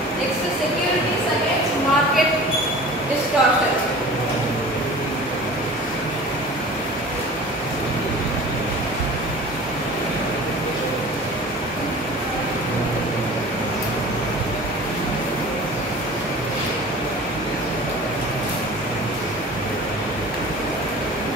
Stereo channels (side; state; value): both; normal; correlation 0.40